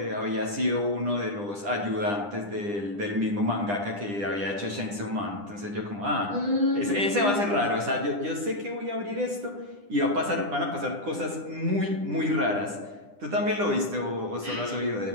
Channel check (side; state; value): left; late; 9.9 ms